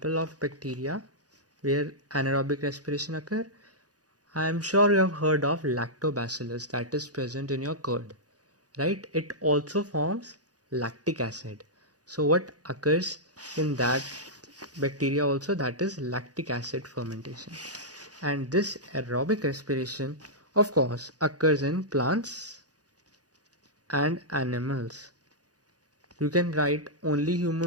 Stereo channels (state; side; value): late; left; 0.68 ms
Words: of bacteria where anaerobic respiration occur? I am sure you have heard of lactobacillus that is present in your curd, right? It also forms lactic acid. So what occurs in that bacteria also? That is lactic acid fermentation. And this aerobic respiration of course occurs in plants and animals. You can write only